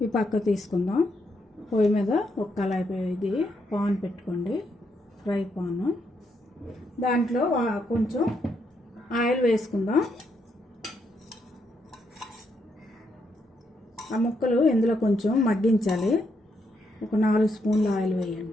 ఈ పక్క తీసుకుందాం. పొయ్యి మీద ఒక కళాయి, ఇది పాన్ పెట్టుకోండి, ఫ్రై పాను. దాంట్లో కొంచెం ఆయిల్ వేసుకుందాం. ఆ ముక్కలు ఇందులో కొంచెం మగ్గించాలి. ఒక 4 స్పూన్ల ఆయిల్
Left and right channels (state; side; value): normal; both; correlation 0.78